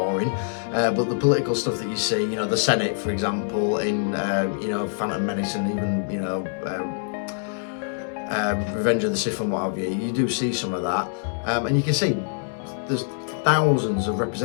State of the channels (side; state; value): right; silent; digital silence